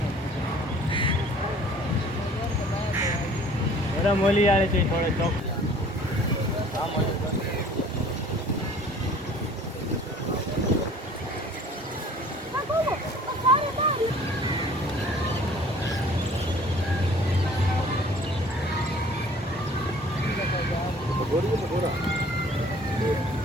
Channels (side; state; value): both; normal; correlation 0.52